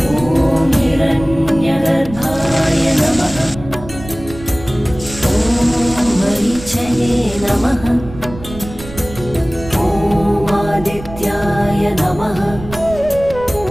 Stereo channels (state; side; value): noise; right; rumble, 14 dB below the sound